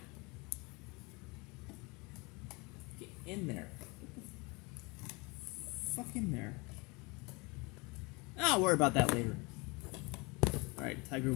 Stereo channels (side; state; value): right; quieter; 27.3 dB